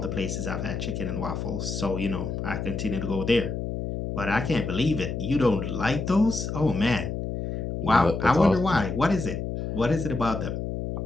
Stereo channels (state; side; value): noise; left; hum, 4 dB below the sound